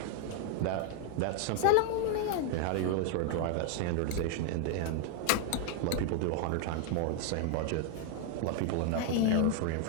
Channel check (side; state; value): both; different; correlation 0.00